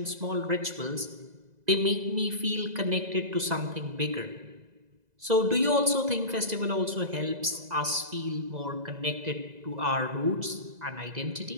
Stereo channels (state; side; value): late; left; 2.0 ms